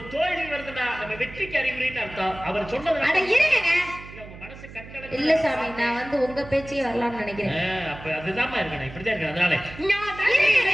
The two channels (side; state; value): right; noise; hum, 16 dB below the sound